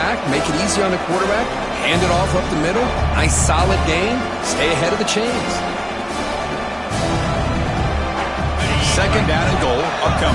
make it easy on the quarterback, hand it off up the middle. Nice solid gain. Stay ahead of the chains. 2nd down and goal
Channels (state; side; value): identical; both; correlation 1.00